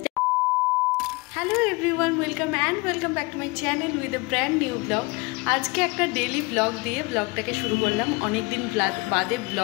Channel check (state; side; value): quieter; right; 25.6 dB